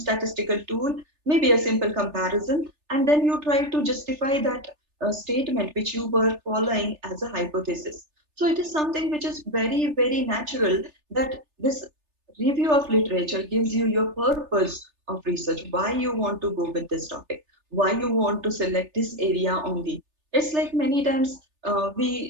tool, maybe a simple comparison, and then you try to justify that statement which you were following as a hypothesis. So it is something which is very, very natural that this review of literature gives you your purpose of research, why you want to go with this topic, why you want to select this area only. It's like many times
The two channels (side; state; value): left; late; 3.3 ms